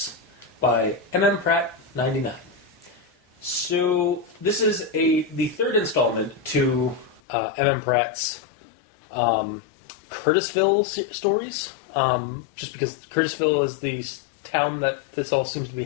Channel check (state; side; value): drops out; right; at 7.2 s